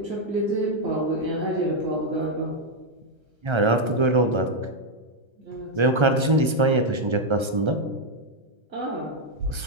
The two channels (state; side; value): late; left; 1.3 ms